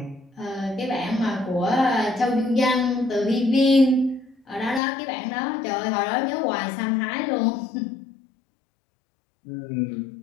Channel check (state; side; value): drops out; right; at 4.8 s